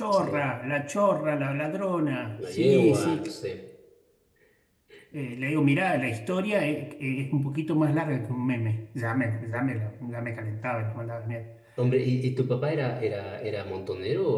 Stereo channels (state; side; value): identical; both; correlation 1.00